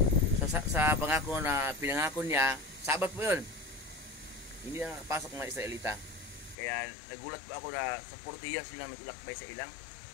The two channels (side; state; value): right; drops out; at 6.6 s